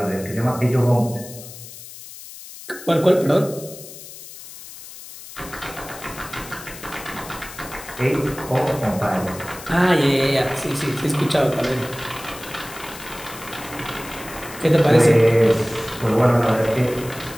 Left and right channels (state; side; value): noise; left; hiss, 15 dB below the sound